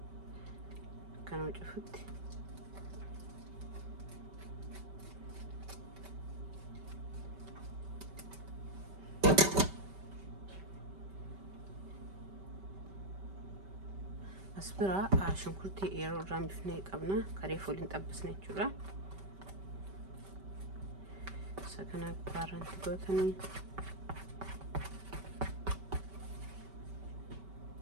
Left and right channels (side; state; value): left; late; 5.2 ms